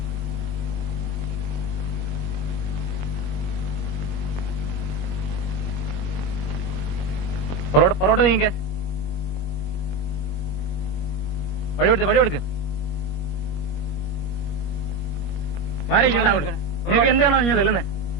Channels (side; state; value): right; late; 21 ms